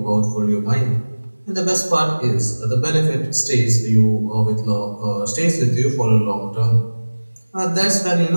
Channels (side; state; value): both; inverted; correlation -1.00